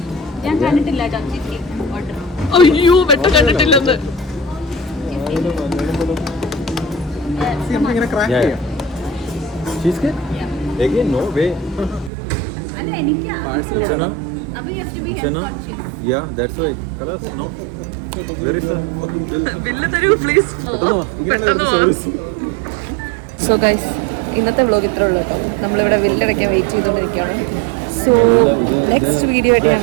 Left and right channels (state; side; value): drops out; left; at 12.1 s